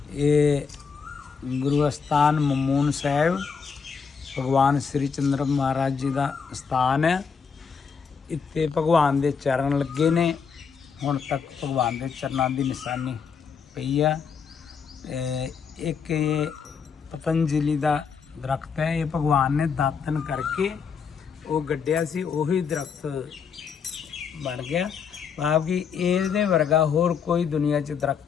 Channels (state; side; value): quieter; right; 6.0 dB